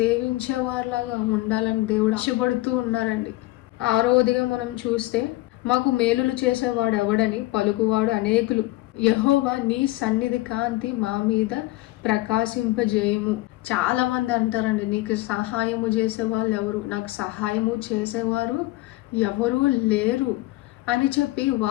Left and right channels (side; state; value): right; quieter; 18.7 dB